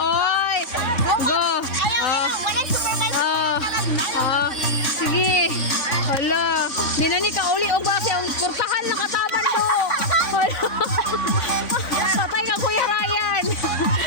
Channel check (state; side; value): late; right; 3.6 ms